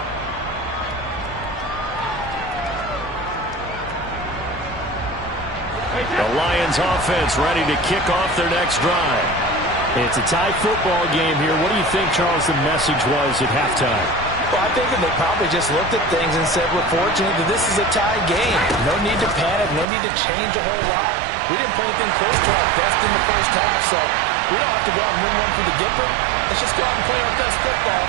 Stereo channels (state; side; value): drops out; left; at 19.9 s